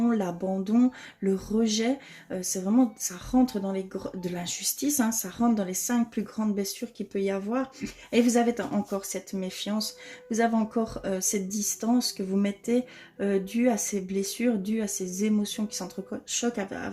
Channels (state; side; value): identical; both; correlation 1.00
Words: l'abandon, le rejet. C'est vraiment, ça rentre dans de l'injustice, hein, ça rentre dans les 5 plus grandes blessures qu'il peut y avoir. Et vous avez encore cette méfiance, vous avez encore cette distance que vous mettez due à ces blessures, due à ces émotions qui s'entrechoquent